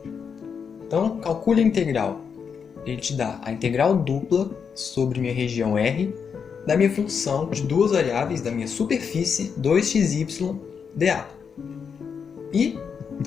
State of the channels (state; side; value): quieter; right; 6.5 dB